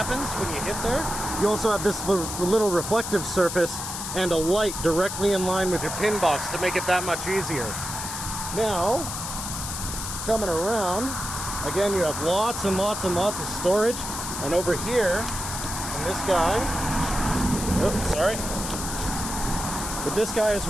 when you hit there. You also have this little reflective surface and a light directly in line with your pin box to make it that much easier. Now, coming around, again, you have lots and lots and lots of storage. And over here, in this guy, oops, sorry. With this guy as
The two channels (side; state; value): left; noise; hiss, 6 dB below the sound